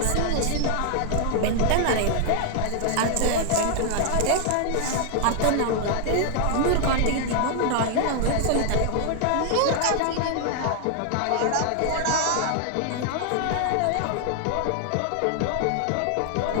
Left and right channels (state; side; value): different; both; correlation 0.00